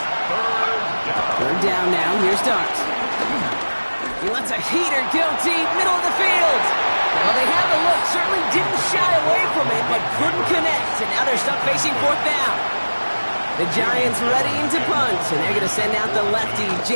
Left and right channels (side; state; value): both; inverted; correlation -1.00